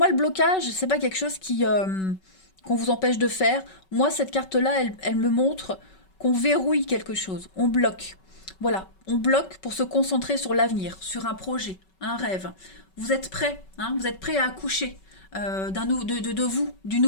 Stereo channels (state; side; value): late; right; 5.3 ms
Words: le blocage, c'est pas quelque chose qu'on vous empêche de faire. Moi, cette carte-là, elle me montre qu'on verrouille quelque chose, on bloque. Voilà, on bloque pour se concentrer sur l'avenir, sur un projet, un rêve. Vous êtes prêt, hein, vous êtes prêt à accoucher de vous, du